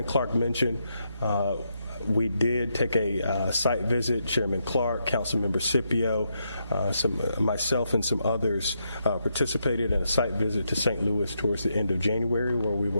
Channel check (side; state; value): both; inverted; correlation -0.81